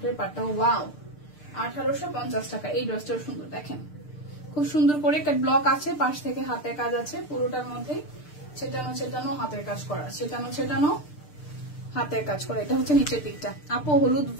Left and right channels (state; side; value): late; right; 6.7 ms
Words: পার্টটা। ওয়াও, 1850 টাকা। এই ড্রেসটাও সুন্দর, দেখেন খুব সুন্দর করে কাট ব্লক আছে, পাশ থেকে হাতের কাজ আছে পুরোটার মধ্যে, ছেটানো ছেটানো হাতের কাজ করা, ছেটানো ছেটানো হাতের কাজ করা। এটা হচ্ছে নিচের দিকটা। আপু হলুদ